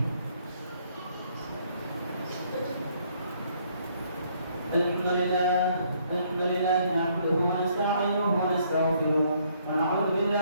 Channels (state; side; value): inverted; both; correlation -0.67